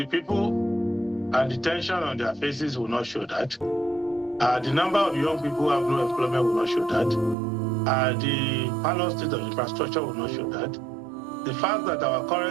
people and the tension on their faces will not show that. The number of young people who have no employment will not show that. The parallel state of infrastructure will not show that. The fact that our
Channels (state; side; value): drops out; left; at 7.4 s